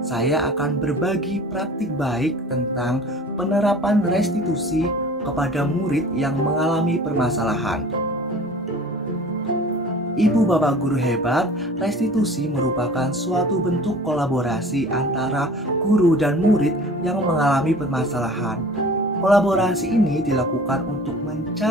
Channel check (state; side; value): normal; both; correlation 0.44